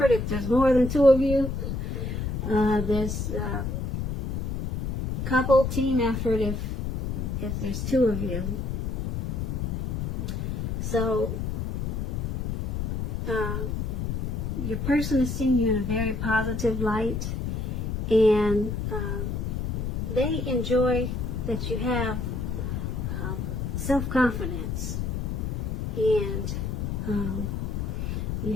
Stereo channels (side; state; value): left; noise; rumble, 2 dB below the sound